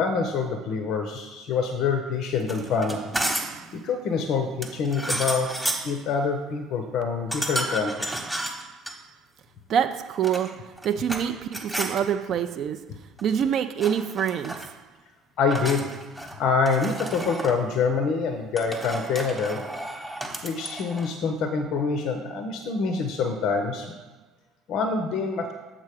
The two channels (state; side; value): normal; both; correlation 0.51